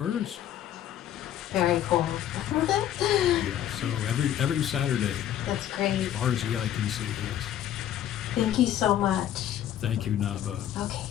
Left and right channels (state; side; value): quieter; right; 11.1 dB